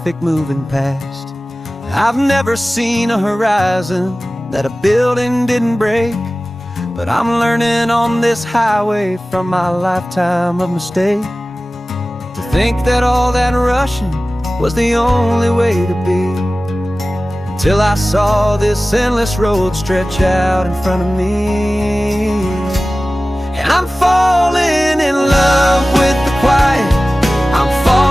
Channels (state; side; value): normal; both; correlation 0.97